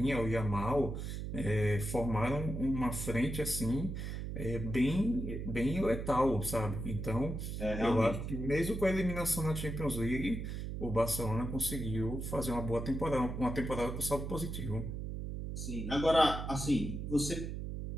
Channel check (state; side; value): noise; right; hum, 5 dB below the sound